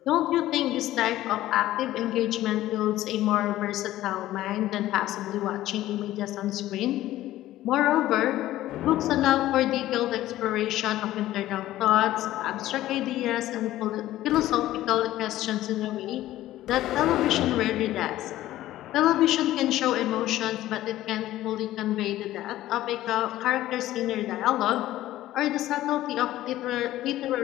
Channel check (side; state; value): right; quieter; 14.7 dB